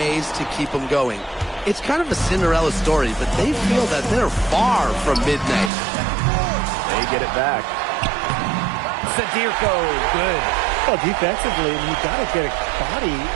to keep them going. It's kind of a Cinderella story, but they feel that they're far from midnight. They get it back. Zadirko, good. Well, defensively, you got to get a body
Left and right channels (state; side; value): drops out; left; at 5.7 s